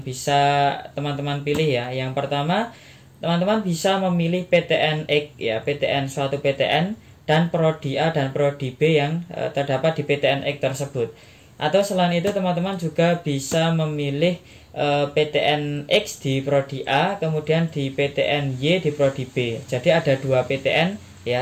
bisa teman-teman pilih ya. Yang pertama, teman-teman bisa memilih PTN X ya, PTN suatu PTN dan prodi A dan prodi B yang terdapat di PTN X tersebut. Atau selain itu teman-teman juga bisa memilih PTN X di prodi A, kemudian di PTN Y di prodi B. Jadi ada 2 PTN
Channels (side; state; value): both; identical; correlation 1.00